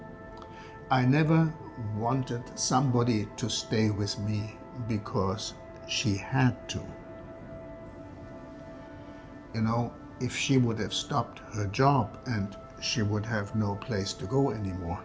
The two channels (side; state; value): both; identical; correlation 1.00